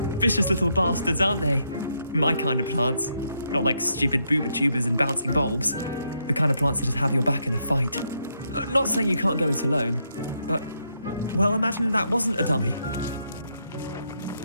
Vicious little bastards, aren't they? My kind of plants. Not like stupid booba tubers and bouncing bulbs. The kind of plants that just have your back in a fight. Not saying you can't go it alone, but, well, imagine that wasn't a dummy.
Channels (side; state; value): both; inverted; correlation -0.78